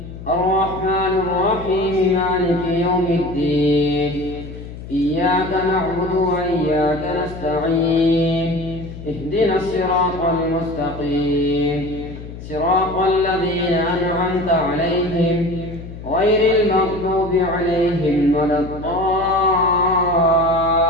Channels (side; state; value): left; noise; hum, 12 dB below the sound